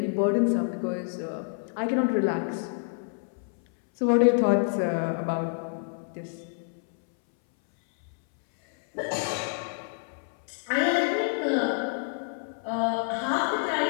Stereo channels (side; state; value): right; silent; 60 dB below the other